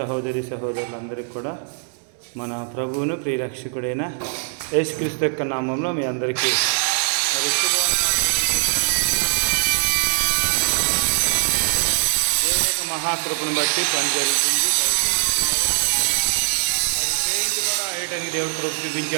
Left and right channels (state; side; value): silent; left; 64 dB below the other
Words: సహోదరులందరికీ కూడా మన ప్రభువును ప్రియరక్షకుడైన యేసుక్రీస్తు యొక్క నామంలో మీ అందరికీ దేవుని యొక్క మహాకృపను బట్టి పని జరుగుతుంది. పెయింట్ కూడా వేయడానికి దేవుడు కృప